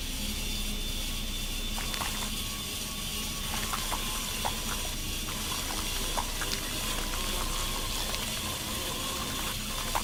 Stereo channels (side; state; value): both; identical; correlation 1.00